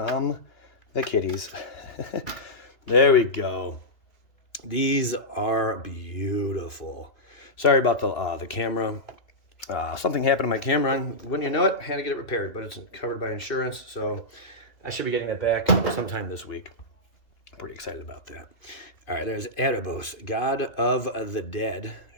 the kitties. There we go. These are beautiful. Sorry about the camera. Something happened to my camera, and wouldn't you know it, I had to get it repaired, but it's covered by insurance, so I should be getting it back sometime this week. I'm pretty excited about that. All right, there's Erebos, God of the Dead,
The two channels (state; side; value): late; right; 2.5 ms